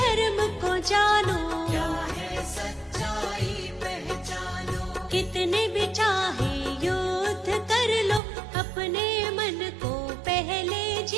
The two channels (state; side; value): drops out; left; at 8.2 s